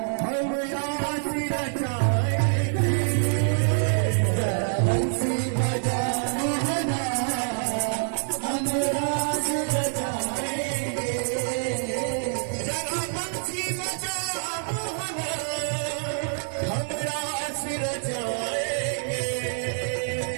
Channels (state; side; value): silent; left; digital silence